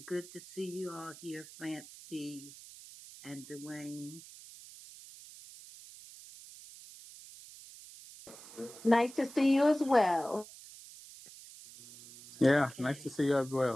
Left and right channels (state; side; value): noise; right; hiss, 17 dB below the sound